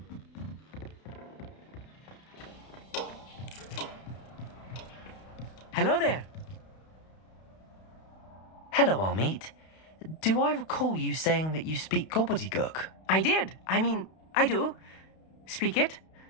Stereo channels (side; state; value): right; late; 32 ms